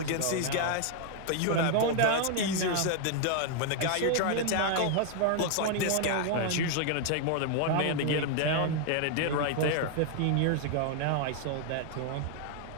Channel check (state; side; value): different; both; correlation 0.00